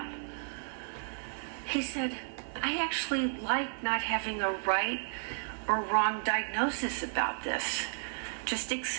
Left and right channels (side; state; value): left; silent; digital silence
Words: He said, I actually like not having a right or wrong diagnosis about this. Just